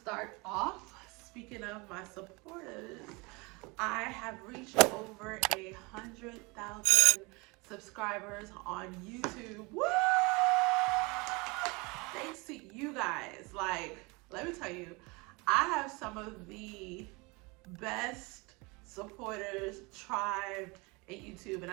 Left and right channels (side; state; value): left; quieter; 26.8 dB